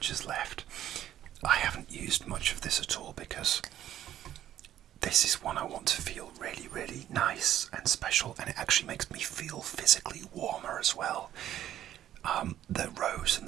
is left. I haven't used much of this at all because this is one I want to feel really, really nice and special, and it actually makes me feel physically warmer as well. The rose and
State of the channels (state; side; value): quieter; left; 11.8 dB